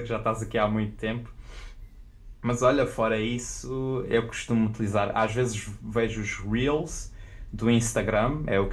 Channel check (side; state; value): both; identical; correlation 1.00